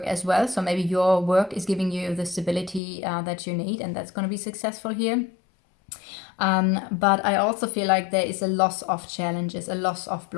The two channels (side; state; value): right; drops out; at 2.8 s